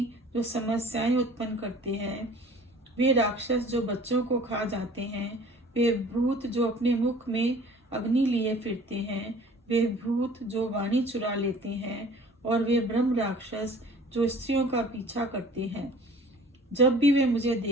जो समस्याएं उत्पन्न करते हैं, वे राक्षस जो बच्चों को खा जाते हैं, वे भूत जो अपने मुख में अग्नि लिए फिरते हैं, वे भूत जो वाणी चुरा लेते हैं और वे ब्रह्म राक्षस जो स्त्रियों का पीछा करते हैं, जब भी वे मुझे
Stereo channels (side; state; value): both; normal; correlation 0.48